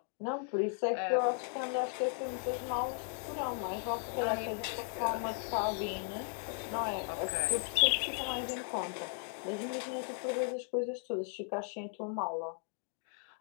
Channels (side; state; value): right; silent; 54 dB below the other